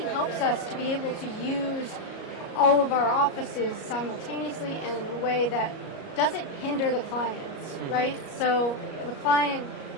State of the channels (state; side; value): late; right; 38 ms